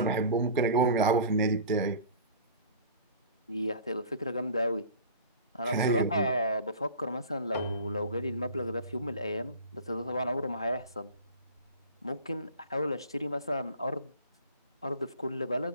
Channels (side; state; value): both; inverted; correlation -0.39